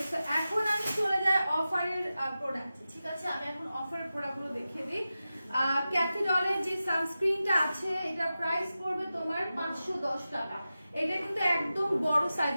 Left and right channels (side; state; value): both; inverted; correlation -0.93